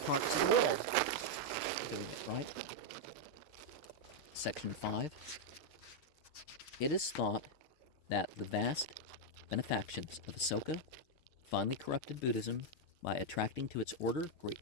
of the world doing it, right? Section 5. It is thought that the vast benefactions of Asoka finally corrupted Buddhism by attracting to its order great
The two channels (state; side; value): late; right; 6.5 ms